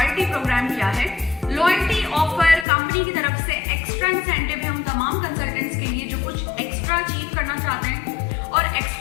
प्रोग्राम क्या है। लॉयल्टी ऑफर कंपनी की तरफ से एक्स्ट्रा इंसेंटिव है उन तमाम कंसल्टेंट्स के लिए जो कुछ एक्स्ट्रा अचीव करना चाहते हैं और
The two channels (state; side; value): drops out; right; at 2.7 s